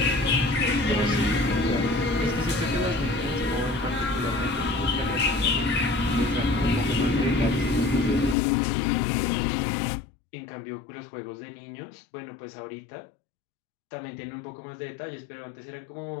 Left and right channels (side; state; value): right; drops out; at 8.3 s